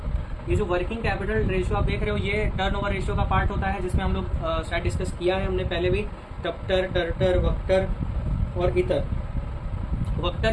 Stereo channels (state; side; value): identical; both; correlation 1.00